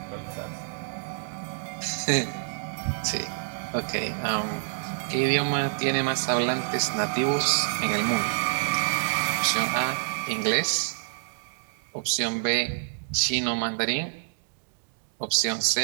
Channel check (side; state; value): left; silent; digital silence